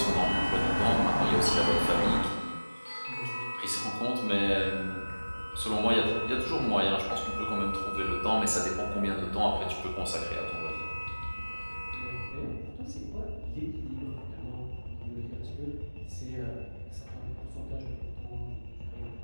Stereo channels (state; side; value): inverted; both; correlation -1.00